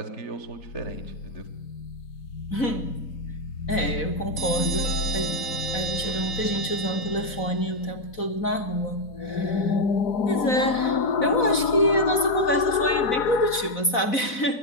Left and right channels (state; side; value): late; right; 4.0 ms